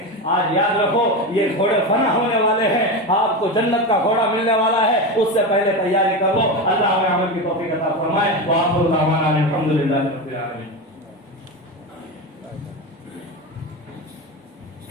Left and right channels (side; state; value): both; normal; correlation 0.19